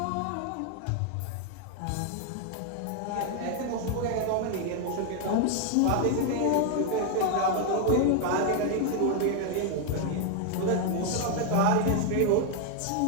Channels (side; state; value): both; different; correlation 0.00